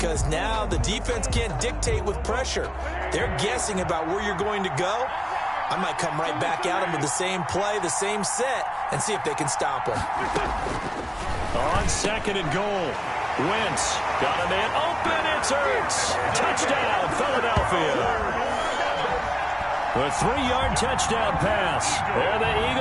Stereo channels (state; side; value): identical; both; correlation 1.00